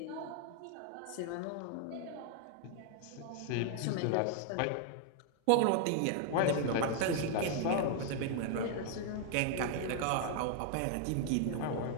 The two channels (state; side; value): different; both; correlation 0.00